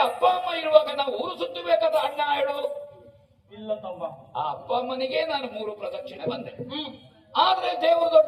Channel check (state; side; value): identical; both; correlation 1.00